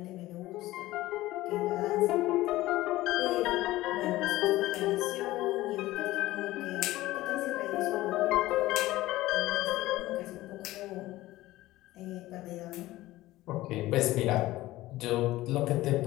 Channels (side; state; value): right; quieter; 17.1 dB